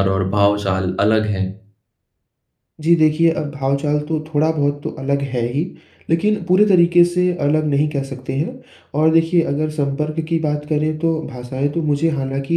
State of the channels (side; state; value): both; identical; correlation 1.00